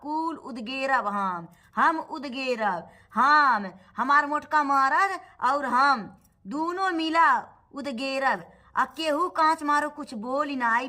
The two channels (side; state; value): both; identical; correlation 1.00